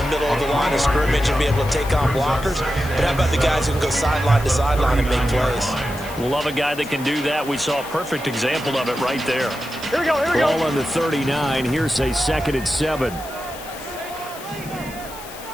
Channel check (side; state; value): left; noise; hiss, 16 dB below the sound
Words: middle of the line of scrimmage and be able to take on blockers. But how about the guys who can go sideline to sideline and make plays? Love a guy that can do that. We saw a perfect example of it right there. Here we go, here we go. Ball on the 39. Here's a 2nd and 7.